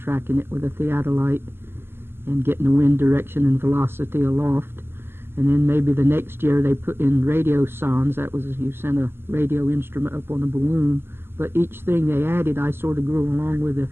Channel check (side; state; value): left; late; 0.11 ms